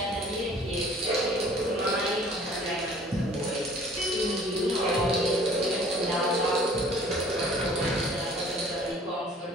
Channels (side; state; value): both; normal; correlation 0.52